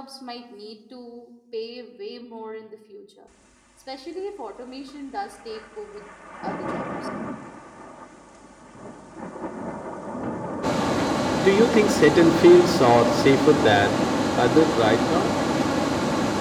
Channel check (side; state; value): both; identical; correlation 1.00